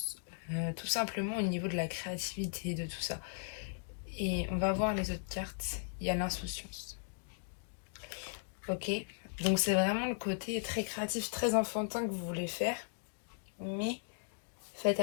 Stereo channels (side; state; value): right; silent; digital silence